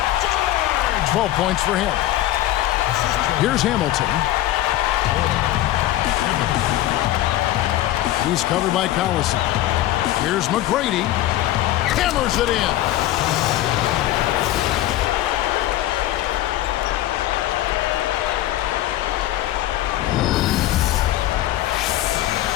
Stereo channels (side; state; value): right; quieter; 14.4 dB